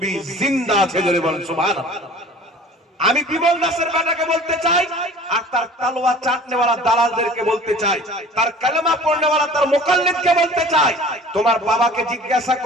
জিন্দা আছে, জোরে বলেন সুবহানাল্লাহ। আমি বিমল দাসের বেটাকে বলতে চাই, আর তার তালওয়া চাটনেওয়ালা দালালদেরকে বলতে চাই, তার কালেমা পড়নেওয়ালা তার মুকাল্লিদকে বলতে চাই, তোমার বাবাকে জিজ্ঞাসা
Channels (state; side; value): normal; both; correlation 0.45